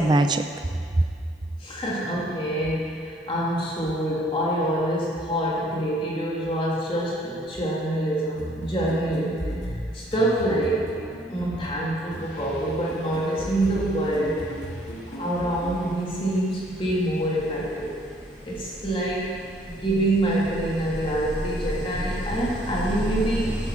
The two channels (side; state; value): both; normal; correlation 0.62